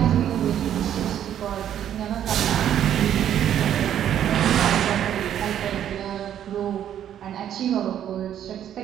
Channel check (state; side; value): quieter; left; 10.3 dB